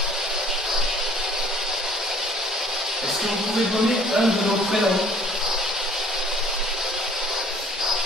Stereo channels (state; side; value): normal; both; correlation 0.54